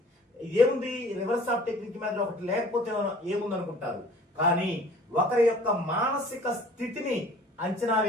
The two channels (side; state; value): both; normal; correlation 0.50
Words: ఏముంది రివర్స్ ఆఫ్ టెక్నిక్ మెథడ్ ఒకటి లేకపోతే ఏముంది అనుకుంటారు. కానీ ఒకరి యొక్క మానసిక స్థితిని అంచనా